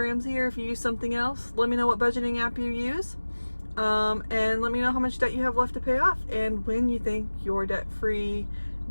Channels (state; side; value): inverted; both; correlation -1.00